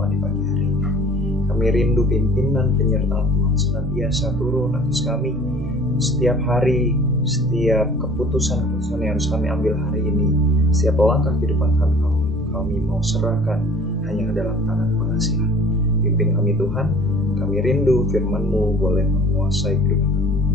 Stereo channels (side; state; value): both; normal; correlation 0.48